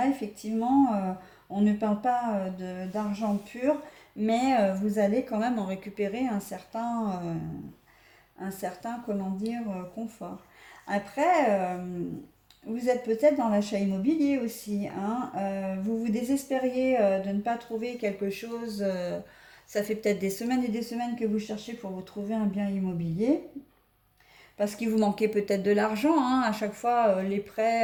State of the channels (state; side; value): identical; both; correlation 1.00